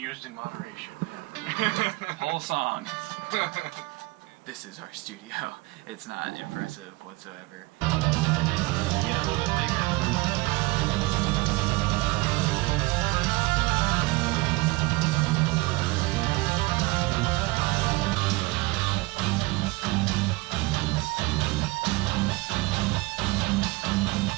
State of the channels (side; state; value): left; quieter; 22.5 dB